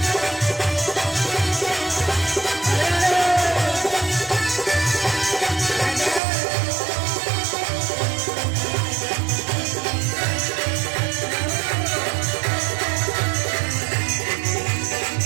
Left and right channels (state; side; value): drops out; left; at 6.2 s